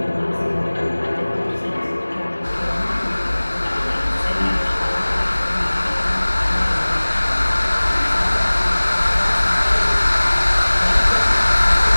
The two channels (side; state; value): both; inverted; correlation -1.00